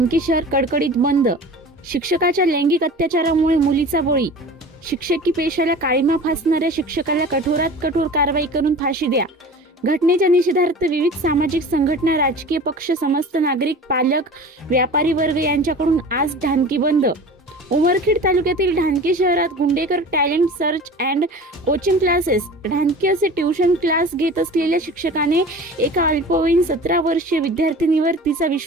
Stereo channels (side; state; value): both; normal; correlation 0.39